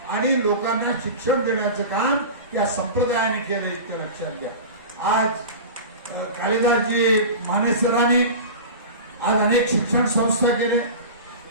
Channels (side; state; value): both; inverted; correlation -0.31